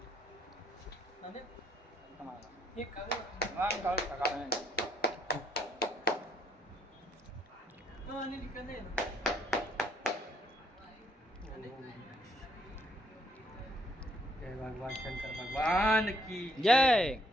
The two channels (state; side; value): normal; both; correlation 0.69